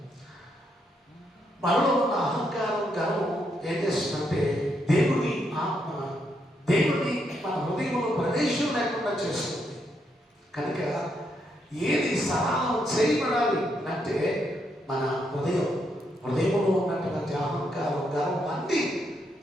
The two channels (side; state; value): both; normal; correlation 0.78